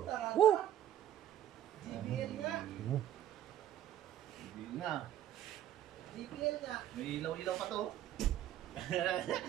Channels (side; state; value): left; quieter; 11.5 dB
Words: taranta. Woo! JBL nga. Hindi nga. JBL nga. May ilaw-ilaw pa to.